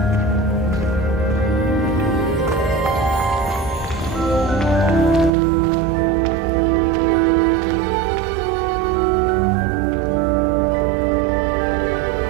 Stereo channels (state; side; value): drops out; left; at 5.3 s